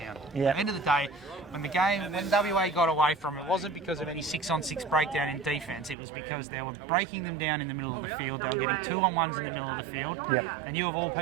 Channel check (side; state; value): left; drops out; at 6.0 s